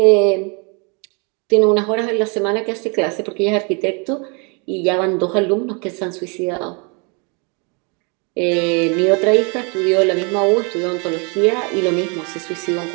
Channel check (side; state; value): left; quieter; 33.9 dB